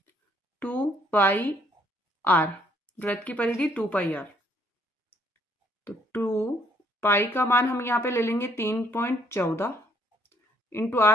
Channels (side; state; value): both; normal; correlation 0.66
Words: 2 पाई आर, वृत्त की परिधि 2 पाई आर। तो 2 पाई का मान हम यहाँ पे ले लेंगे 3.14 इंटू